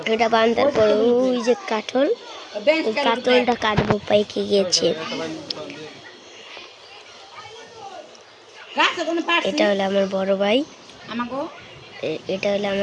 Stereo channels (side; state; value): both; identical; correlation 1.00